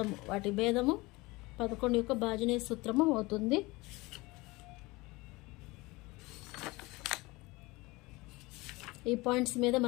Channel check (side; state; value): right; quieter; 22.6 dB